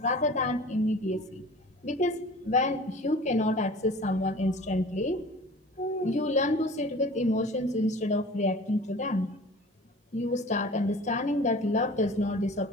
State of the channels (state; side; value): normal; both; correlation 0.42